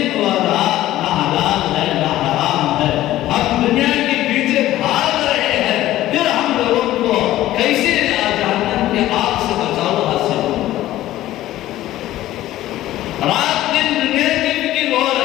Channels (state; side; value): quieter; right; 14.7 dB